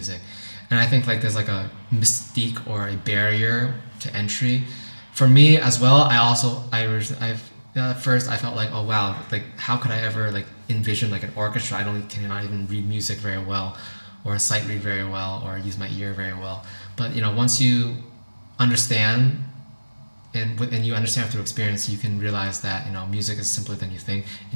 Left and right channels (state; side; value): inverted; both; correlation -1.00